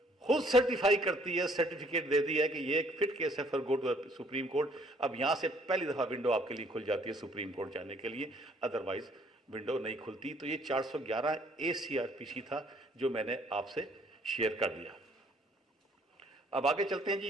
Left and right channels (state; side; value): normal; both; correlation 0.62